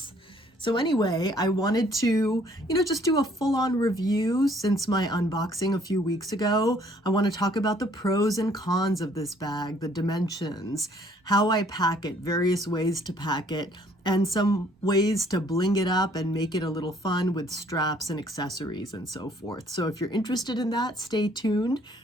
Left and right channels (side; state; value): both; normal; correlation 0.61